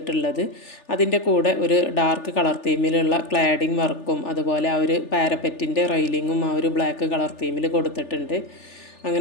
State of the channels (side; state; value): right; late; 3.4 ms